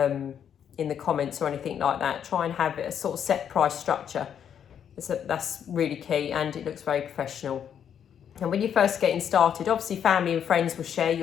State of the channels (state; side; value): quieter; right; 8.6 dB